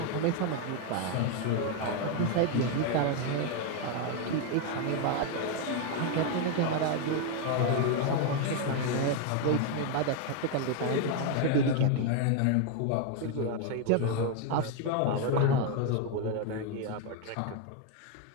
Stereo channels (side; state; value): both; different; correlation 0.01